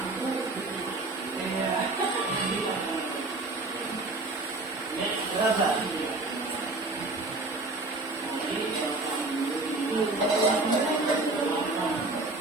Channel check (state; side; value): quieter; left; 3.2 dB